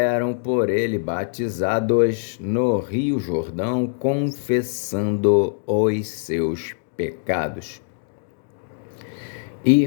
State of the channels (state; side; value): silent; right; digital silence